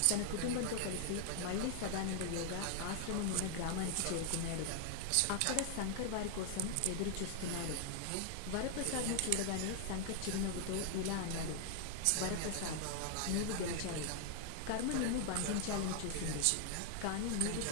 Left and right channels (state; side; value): different; both; correlation 0.00